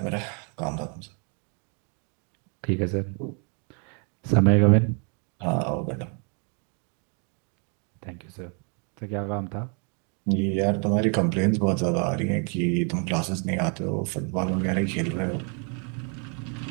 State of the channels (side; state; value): left; quieter; 38.0 dB